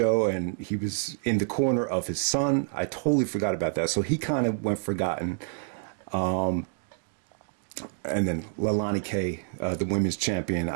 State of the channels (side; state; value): left; silent; digital silence